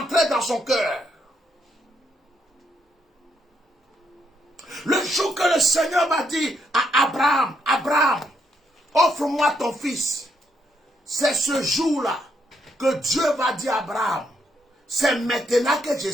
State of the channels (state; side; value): normal; both; correlation 0.76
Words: dans son cœur? Le jour que le Seigneur m'a dit à Abraham, Abraham, offre-moi ton fils. C'est ce jour-là que Dieu va dire à Abraham, c'est maintenant que je